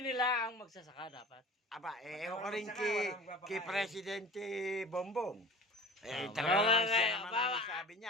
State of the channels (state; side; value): normal; both; correlation 0.40